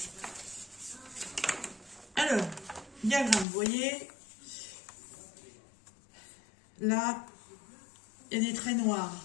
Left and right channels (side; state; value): right; drops out; at 3.5 s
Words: Alors, diagramme, vous voyez, là, il y a des traits noirs.